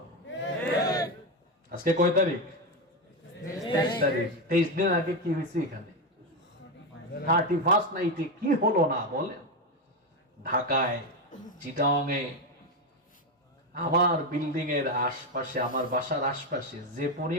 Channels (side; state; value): both; normal; correlation 0.11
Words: আজকে কয় তারিখ? 23 তারিখ। 23 দিন আগে কি হয়েছে এখানে? 31st নাইটে কি হলো না বলেন? ঢাকায়, চিটাংয়ে, আমার বিল্ডিং এর আশপাশে, আমার বাসার আশপাশে যে